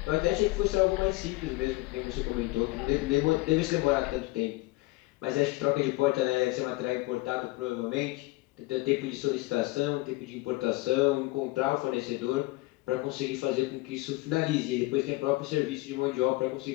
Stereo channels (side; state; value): right; quieter; 21.2 dB